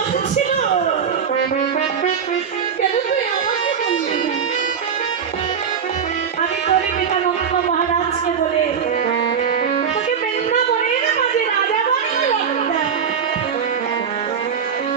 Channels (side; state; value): left; quieter; 7.1 dB